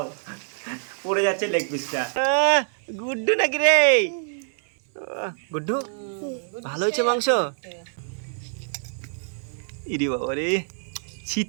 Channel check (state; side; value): silent; left; digital silence